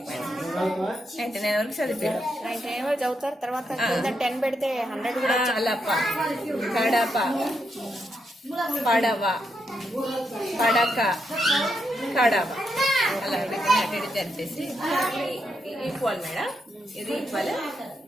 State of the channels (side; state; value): both; normal; correlation 0.81